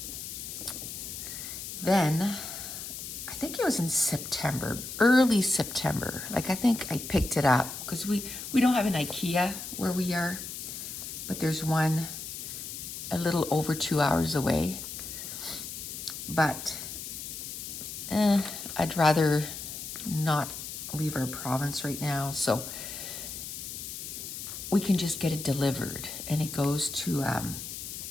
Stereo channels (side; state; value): left; noise; hiss, 8 dB below the sound